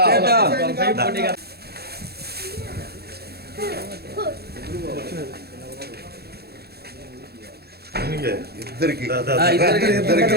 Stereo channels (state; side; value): late; left; 0.46 ms